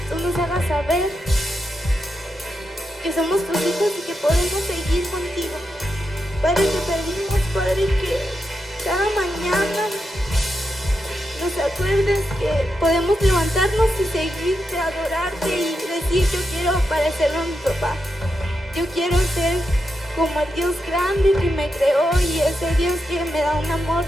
tú nos hagas saber que somos tus hijos y que podemos seguir contigo. Padre, te pedimos, Padre, que cada mañana nos acuerdes que podemos levantarnos y seguirte, adorarte y decir: yo quiero parecerme a mi papá. Yo quiero ser como el Dios grande que me creó y ese Dios que me da un amor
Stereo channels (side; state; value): both; normal; correlation 0.86